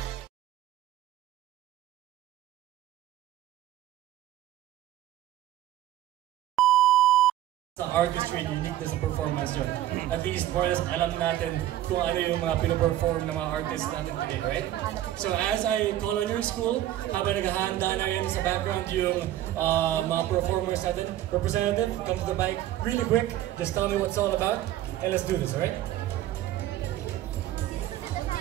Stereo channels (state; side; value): quieter; left; 13.4 dB